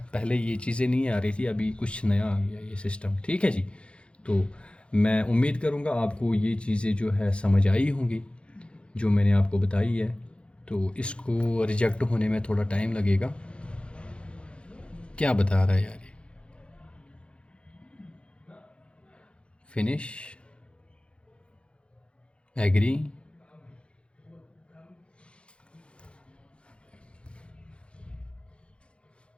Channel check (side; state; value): right; late; 0.058 ms